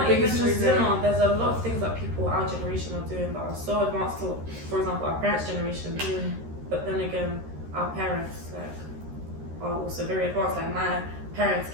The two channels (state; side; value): late; left; 13 ms